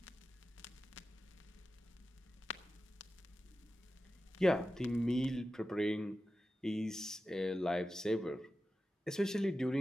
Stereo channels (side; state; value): both; normal; correlation 0.93